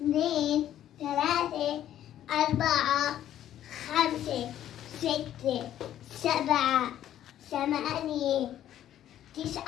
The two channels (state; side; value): quieter; right; 11.6 dB